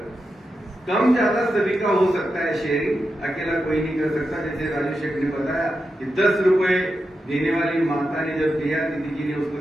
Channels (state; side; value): normal; both; correlation 0.88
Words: कम ज्यादा सभी का हो सकता है शेयरिंग, अकेला कोई नहीं कर सकता। जैसे राजू शेख ने बताया कि 10 रुपए देने वाली माता ने जब दिया, दीदी जी ने उसको